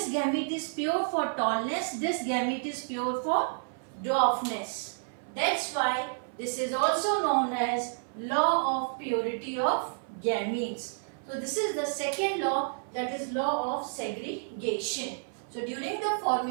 gamete is pure for tallness, this gamete is pure for dwarfness. That's why this is also known as law of purity of gametes. So this is the second law, that is law of segregation. So during the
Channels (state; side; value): silent; left; 57 dB below the other